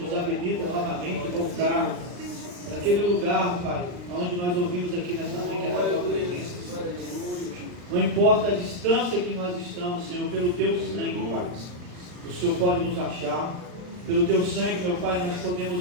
habilita novamente a voltar naquele lugar, Pai, onde nós ouvimos aqui nesta manhã, que é da Tua presença. Não importa a distância que nós estamos, Senhor, pelo Teu sangue, Pai, o Senhor pode nos achar. Pelo Teu sangue, meu Pai, nós podemos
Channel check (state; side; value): late; left; 39 ms